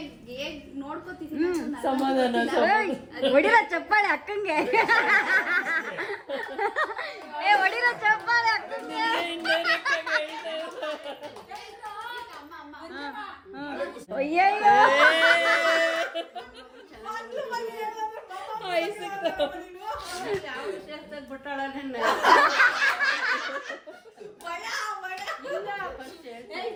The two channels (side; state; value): both; identical; correlation 1.00